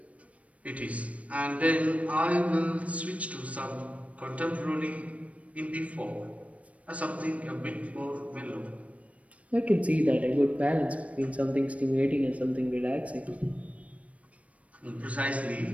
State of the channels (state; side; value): late; left; 0.065 ms